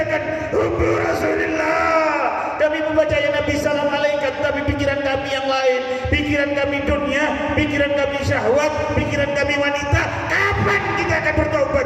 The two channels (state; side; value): identical; both; correlation 1.00